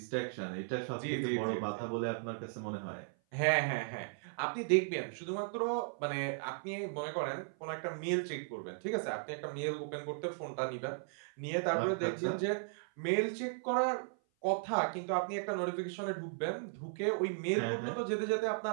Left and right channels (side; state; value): left; silent; 54 dB below the other